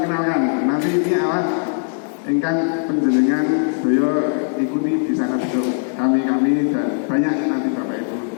nanti ini awas ingkang penjenengan beliau ikuti di sana besok kami dan banyak nanti Bapak Ibu.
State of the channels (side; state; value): right; silent; 66 dB below the other